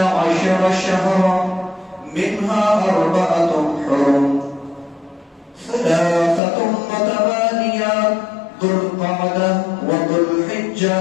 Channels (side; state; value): right; drops out; at 6.4 s